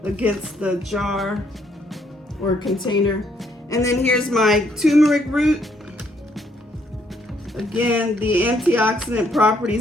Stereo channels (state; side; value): normal; both; correlation 0.70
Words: against the jar or container. And then here's my turmeric root. Again, the antioxidant